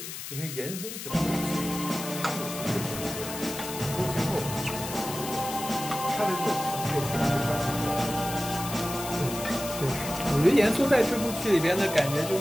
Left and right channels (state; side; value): noise; left; hiss, 8 dB below the sound